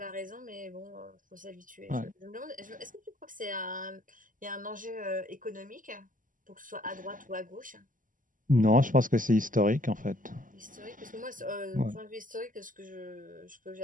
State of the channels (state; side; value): late; left; 0.38 ms